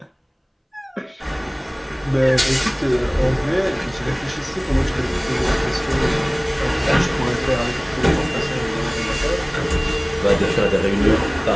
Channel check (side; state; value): both; identical; correlation 1.00